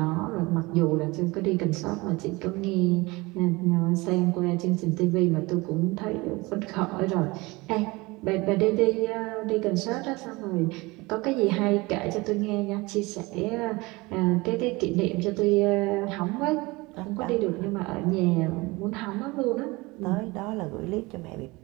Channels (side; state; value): left; quieter; 23.3 dB